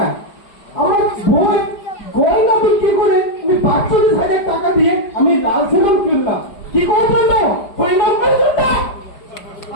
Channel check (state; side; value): late; right; 4.9 ms